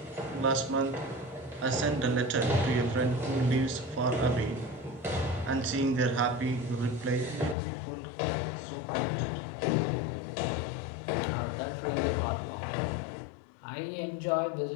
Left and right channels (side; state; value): right; drops out; at 7.6 s